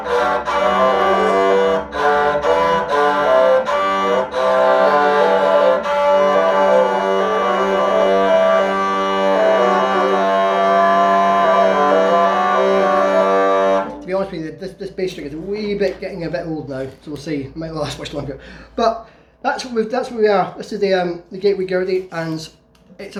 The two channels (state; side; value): identical; both; correlation 1.00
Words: honest with you, this bass string is a wee bit getting a bit old now, so we'll see. It might not last much longer. But that's where we are. This is the Gateway Gurdy, and it's